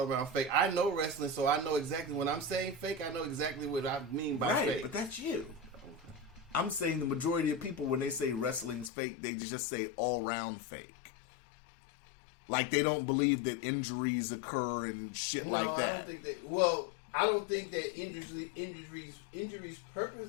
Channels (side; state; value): right; drops out; at 8.9 s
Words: around fake. I know wrestling, so I know exactly when I'm saying fake. I know exactly what I mean by Right, fake. but that's you. I'm saying the majority of people, when they say wrestling's fake, they just say all round fake. Like they don't believe that injuries occur and shit No, like that. I don't think that. Well, I don't think that injuries